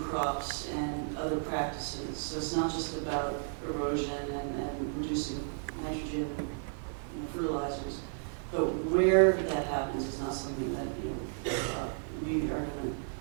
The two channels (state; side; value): silent; left; 56 dB below the other